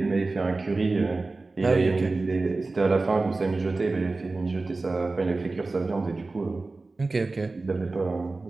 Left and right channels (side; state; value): left; quieter; 3.5 dB